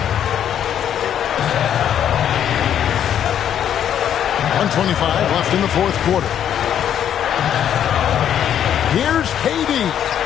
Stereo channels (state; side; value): quieter; right; 9.7 dB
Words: 1:25 left in the fourth quarter. Here's KD.